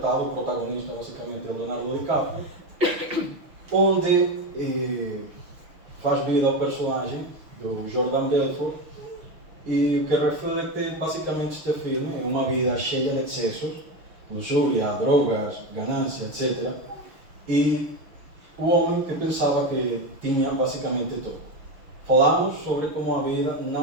o protagonista basicamente é Leonardo DiCaprio, onde faz vida ao personagem do Jordan Belfort, e o que reflete basicamente este filme é uma vida cheia de excessos, luxúria, drogas, ganância, etc. E o homem que pensava que tinha basicamente tudo. Falamos sobre como a vida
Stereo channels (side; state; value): left; late; 6.3 ms